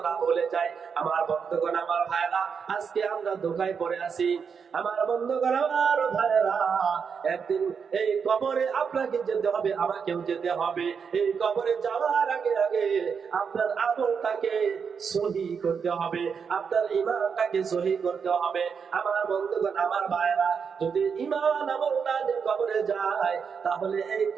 ভুলে যায়। আমার বন্ধুগণ, আমার ভাইরা, আজকে আমরা ধোঁকায় পড়ে আছি। আমার বন্ধুগণ, আমার ভাইরা, একদিন এই কবরে আপনাকে যেতে হবে, আমাকেও যেতে হবে। এই কবরে যাওয়ার আগে আগে আপনার আমলটাকে সহি করতে হবে, আপনার ঈমানটাকে সহি করতে হবে। আমার বন্ধুগণ, আমার ভাইরা, যদি ঈমান আমল না নিয়ে কবরে যায়, তাহলে এই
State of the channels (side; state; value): left; quieter; 6.3 dB